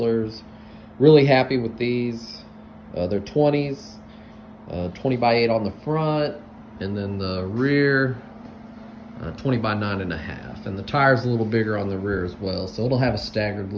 Really happy with these. They're 20s, 20 by 8 on the front, and then the rear, 20 by 9.5. And the tire's a little bigger on the rear as well, so it'll have a staggered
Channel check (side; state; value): both; identical; correlation 1.00